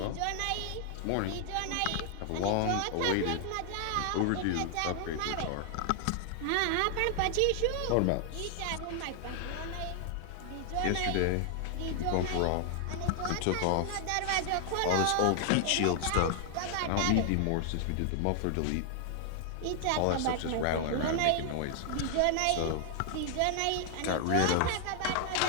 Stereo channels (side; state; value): both; different; correlation 0.00